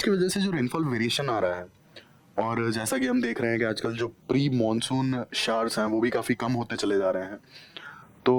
की वजह से जो रेनफॉल वेरिएशन आ रहा है, और जैसा कि हम देख रहे हैं कि आजकल जो प्री मॉनसून शावर्स हैं वो भी काफ़ी कम होते चले जा रहे हैं,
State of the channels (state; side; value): identical; both; correlation 1.00